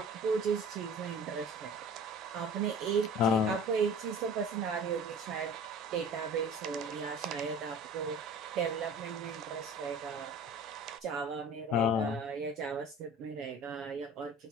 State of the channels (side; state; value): both; normal; correlation 0.42